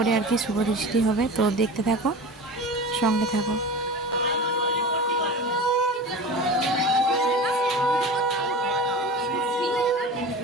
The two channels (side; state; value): both; normal; correlation 0.32